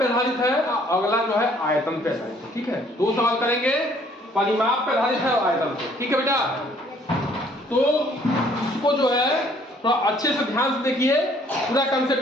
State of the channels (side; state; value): both; normal; correlation 0.61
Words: आधारित है, अगला जो है आयतन पे आधारित है। ठीक है, दो सवाल करेंगे, परिमाप पे आधारित है और आयतन पे। ठीक है बेटा, तो इसको जो है थोड़ा अच्छे से ध्यान से देखिए, पूरा